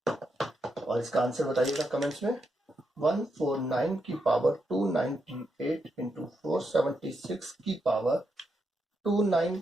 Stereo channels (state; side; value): normal; both; correlation 0.82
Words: और इसका आंसर बताइएगा कमेंट्स में। 149 की पावर 298 इंटू 476 की पावर